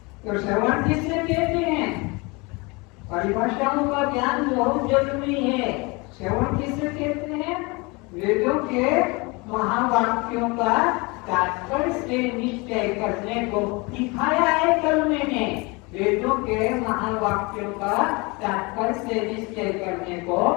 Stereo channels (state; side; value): quieter; right; 27.1 dB